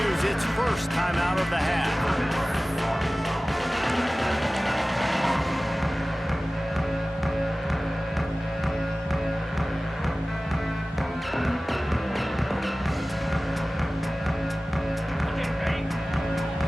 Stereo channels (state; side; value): normal; both; correlation 0.97